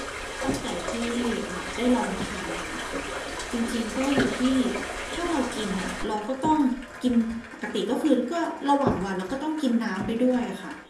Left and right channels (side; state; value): both; identical; correlation 1.00